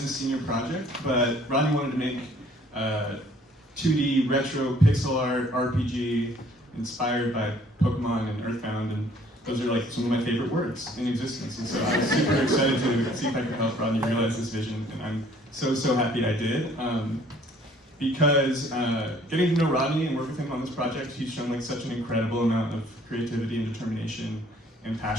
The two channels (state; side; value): normal; both; correlation 0.58